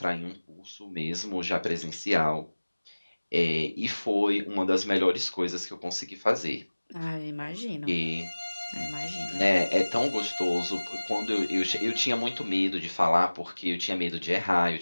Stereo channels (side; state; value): both; inverted; correlation -1.00